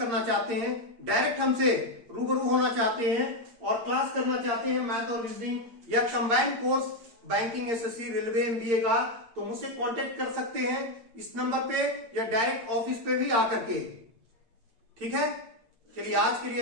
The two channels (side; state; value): left; late; 8.7 ms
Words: चाहते हैं, डायरेक्ट हमसे रूबरू होना चाहते हैं और क्लास करना चाहते हैं मैथ और रीजनिंग या combined course banking, SSC, railway, MBA का, तो मुझसे कांटेक्ट कर सकते हैं इस नंबर पे या डायरेक्ट ऑफिस पे भी आकर के। ठीक है, चलिए आज के लिए